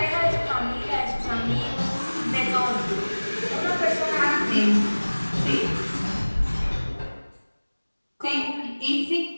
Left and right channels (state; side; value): inverted; both; correlation -1.00